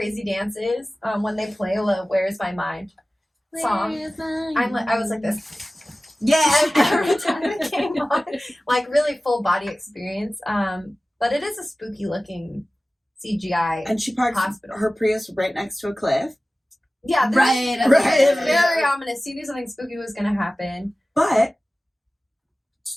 dance is, when they play Where's My Mind song, I was like this. Yeah. Every time it came on. Like, really full body experience. But it is a spooky looking CGI And she parks hospital. her Prius right next to a cliff. Yeah, Right. It's very ominous. She knew something spooky was going to happen. But,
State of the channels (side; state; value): both; normal; correlation 0.97